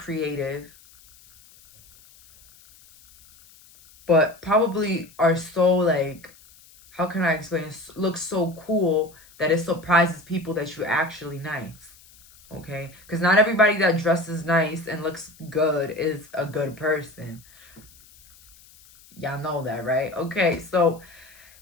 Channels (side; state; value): left; noise; hiss, 25 dB below the sound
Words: but probably are so like, how can I explain? Look so cool that it surprises people that you're actually nice. Okay? Because not everybody that dresses nice and looks good is a good person. Y'all know that, right? Okay, so